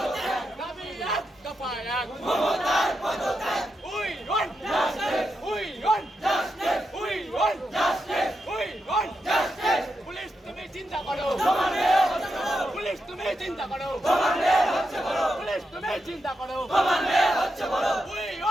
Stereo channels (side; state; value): both; normal; correlation 0.85